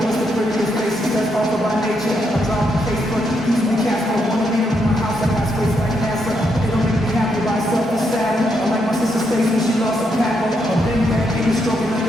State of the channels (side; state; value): both; normal; correlation 0.79